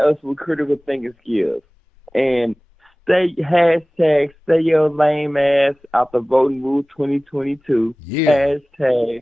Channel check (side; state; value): both; normal; correlation 0.98